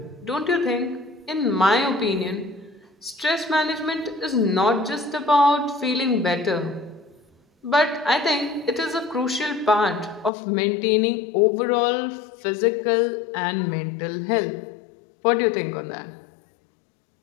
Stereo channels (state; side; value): drops out; right; at 10.3 s